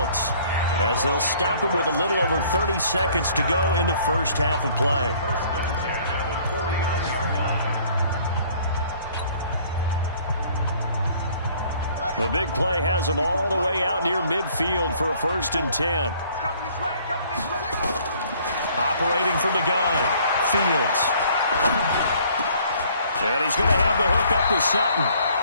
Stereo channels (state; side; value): inverted; both; correlation -0.58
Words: as they'll stop it with a little over 30 seconds to go in the first half of play. The big play has them all the way out near midfield for a 1st and 10. Operating from the gun, Fields. And he's going to have the hook up to Sutton.